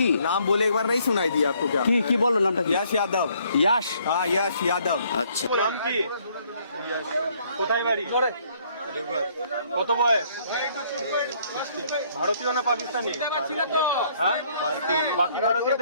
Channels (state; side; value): inverted; both; correlation -0.65